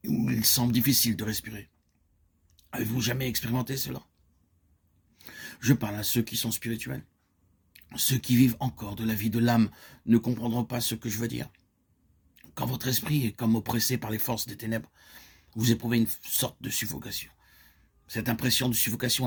où il semble difficile de respirer. Avez-vous jamais expérimenté cela? Je parle à ceux qui sont spirituels. Ceux qui vivent encore de la vie de l'âme ne comprendront pas ce que je veux dire. Quand votre esprit est comme oppressé par les forces des ténèbres, vous éprouvez une sorte de suffocation. Cette impression de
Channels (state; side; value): identical; both; correlation 1.00